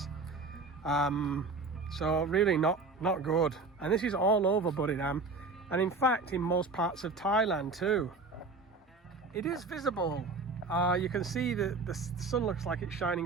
So really not good. And this is all over Buriram, and in fact in most parts of Thailand too. It is visible. You can see that the sun looks like it's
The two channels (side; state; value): left; quieter; 3.8 dB